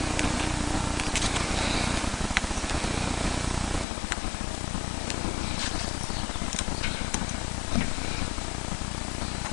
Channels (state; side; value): drops out; right; at 3.9 s